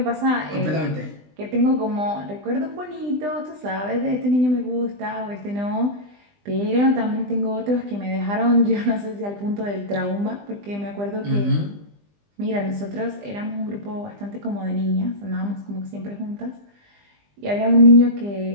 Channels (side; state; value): left; late; 20 ms